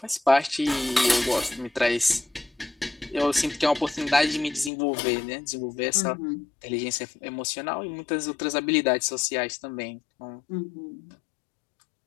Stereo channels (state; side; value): drops out; right; at 4.7 s